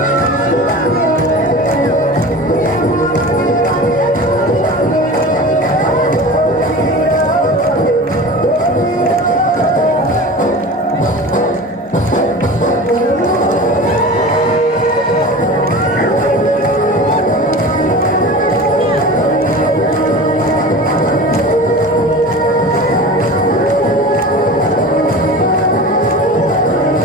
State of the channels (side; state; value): both; normal; correlation 0.34